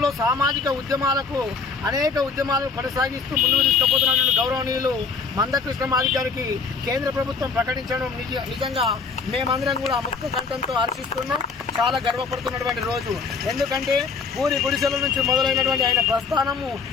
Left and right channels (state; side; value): quieter; right; 4.9 dB